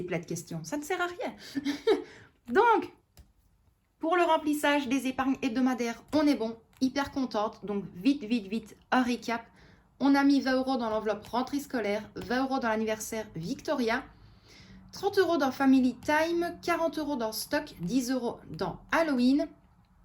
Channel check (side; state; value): both; identical; correlation 1.00